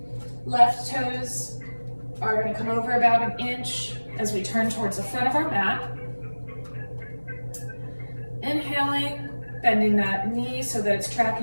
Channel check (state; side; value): inverted; both; correlation -1.00